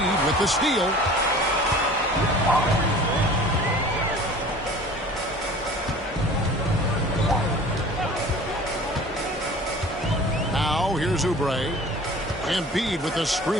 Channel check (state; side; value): normal; both; correlation 0.44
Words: with the steal. Now here's Oubre. Embiid with the